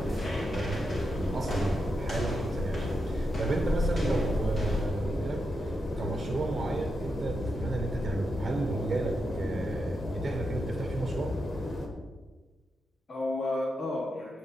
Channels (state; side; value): normal; both; correlation 0.85